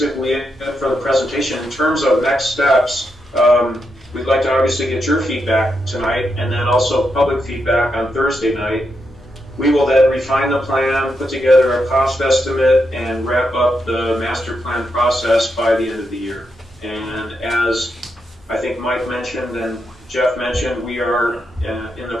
it for the presentation. In terms of next steps, we'd like to obviously get your feedback tonight, and then also public feedback on Thursday night. We will then refine the plan, put together a cost estimate, and wrap up the master plan process by the end of the year. And as I think Mike mentioned and Jeff mentioned, we are in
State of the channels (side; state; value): both; normal; correlation 0.83